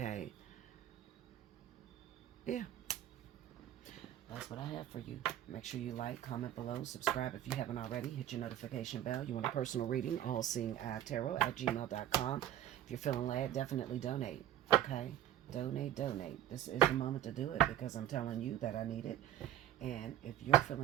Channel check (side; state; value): left; quieter; 11.7 dB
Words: Yeah. That's what I have for you. Make sure you like, comment below, subscribe if you haven't already. Hit your notification bell. You want a personal reading? Allseeingeyetarot@gmail.com. If you're feeling glad, definitely donate. Okay? Donate. This is the moment to do it, because I'm telling you that I need it. And if you're